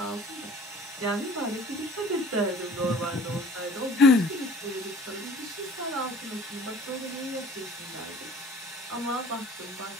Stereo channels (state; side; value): normal; both; correlation 0.48